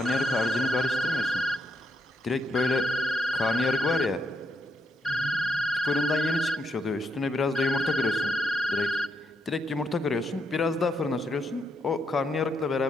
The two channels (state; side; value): normal; both; correlation 0.79